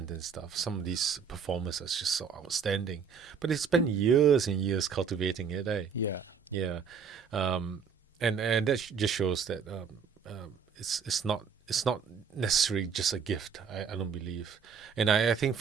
and stuff. Some of these performers are just so outstanding, but they spend years and years cultivating it. Yeah. Yeah, um, and that just shows that it's not necessarily just a gift. I don't believe, and I think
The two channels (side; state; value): left; quieter; 6.4 dB